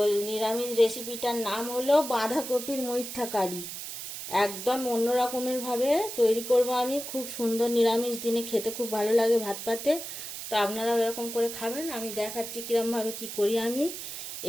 নিরামিষ রেসিপিটার নাম হলো বাঁধাকপির মুইঠা কারি। একদম অন্য রকমের ভাবে তৈরি করব আমি। খুব সুন্দর, নিরামিষ দিনে খেতে খুব ভালো লাগে ভাত পাতে। তো আপনারাও এরকম করে খাবেন। আমি দেখাচ্ছি কিরমভাবে কি করি আমি।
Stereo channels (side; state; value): right; noise; hiss, 8 dB below the sound